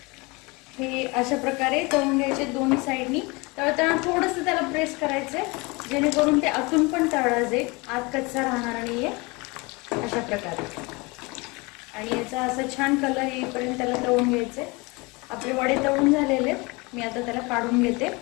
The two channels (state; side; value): quieter; right; 26.1 dB